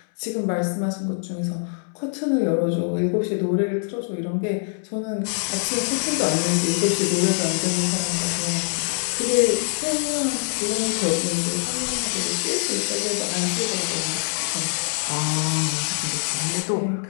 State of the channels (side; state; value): right; silent; 63 dB below the other